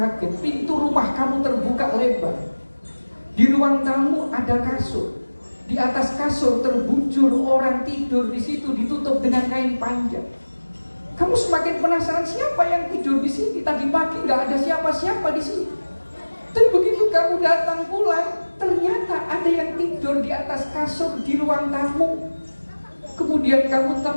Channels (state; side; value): inverted; both; correlation -1.00